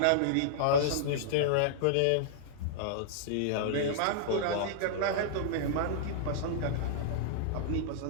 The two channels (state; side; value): different; both; correlation -0.02